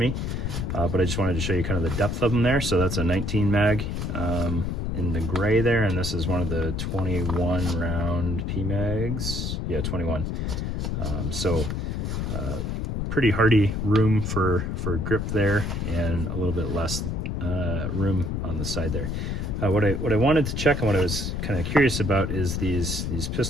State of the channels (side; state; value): left; noise; rumble, 2 dB below the sound